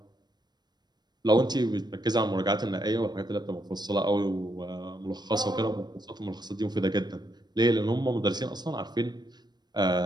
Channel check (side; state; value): left; late; 0.20 ms